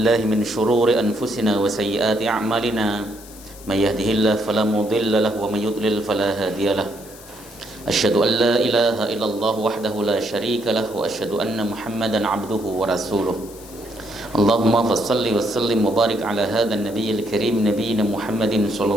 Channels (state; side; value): noise; left; hiss, 19 dB below the sound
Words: min shururi anfusina wa sayyiati a'malina. May yahdihillahu fala mudilla lahu wa may yudlil fala hadiya lahu. Asyhadu an la ilaha illallah wahdahu la syarika lahu wa asyhadu anna Muhammadan 'abduhu wa rasuluh. Allahumma fassalli wa sallim wa barik ala hadzal nabiyil karim nabiyina Muhammadin